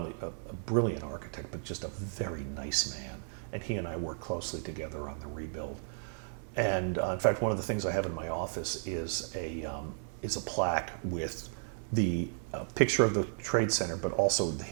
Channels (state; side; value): silent; left; digital silence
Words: a brilliant architect, but just a very nice man. And he and I worked closely together on the rebuild. And in fact, one of the things I have in my office is a plaque with the picture of the Trade Center, but also